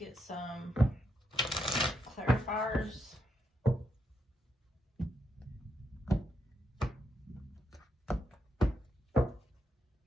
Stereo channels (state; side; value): normal; both; correlation 0.80